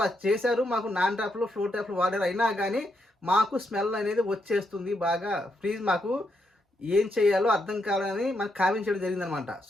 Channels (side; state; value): both; normal; correlation 0.80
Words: చేశారు. మాకు నాన్ ట్యాప్లు ఫ్లోర్ ట్యాప్లు వాడారు, అయినా కానీ మాకు స్మెల్ అనేది వచ్చేస్తుంది బాగా. ప్లీజ్ మాకు ఏం చేయాలో అర్థం కావాలని మనకు కామెంట్ చేయడం జరిగిందనమాట.